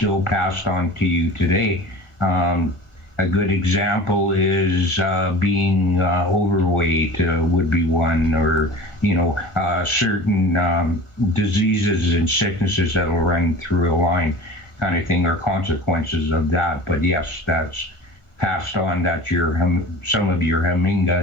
passed on to you today. A good example is being overweight would be one, or certain diseases and sicknesses that will run through a line, kind of thing, or consequences of that. But yes, that's passed on. That's some of your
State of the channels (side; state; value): right; late; 1.5 ms